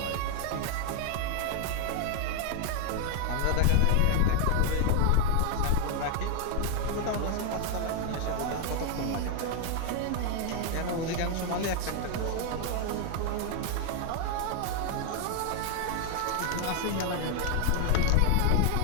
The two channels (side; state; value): both; different; correlation 0.01